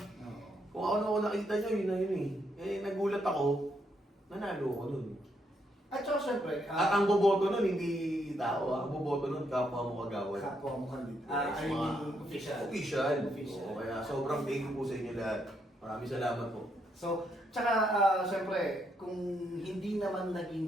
Kung ako nakita nyo, yun na yun nagulat ako, nanalo ako nun. At saka syempre, At ang boboto nun, hindi tao Ang boboto nun, kapwa mo kagawad. kapwa mo kandidato. Yes, I mean, official. Official. Official. Oo, kaya sobrang thank you po sa inyo lahat. Maraming salamat po. So, tsaka syempre, kung hindi naman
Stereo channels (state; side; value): normal; both; correlation 0.76